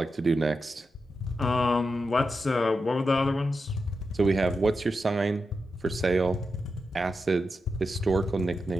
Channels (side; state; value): both; normal; correlation 0.88